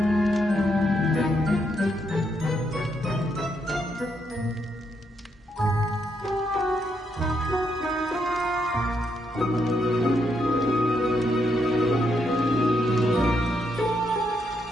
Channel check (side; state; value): both; normal; correlation 0.78